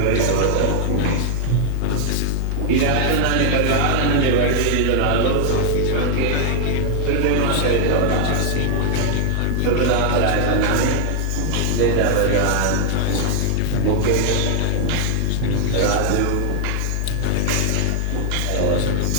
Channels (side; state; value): both; different; correlation 0.00